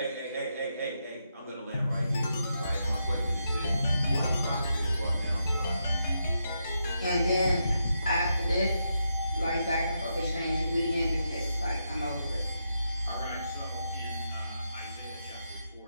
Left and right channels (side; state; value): both; inverted; correlation -0.83